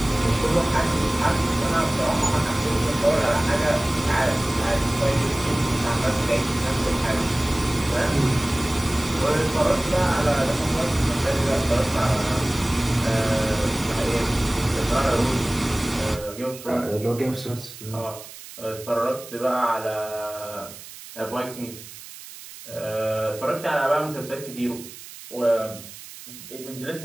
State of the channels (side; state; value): right; noise; hiss, 15 dB below the sound